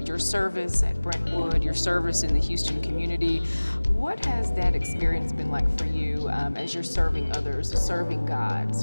your service at Brentwood, your service in the Houston community. What has that experience been like for you as you're serving others, serving God,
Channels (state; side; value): inverted; both; correlation -1.00